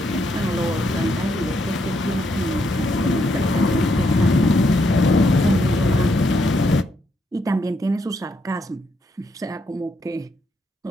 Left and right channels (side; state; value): both; normal; correlation 0.76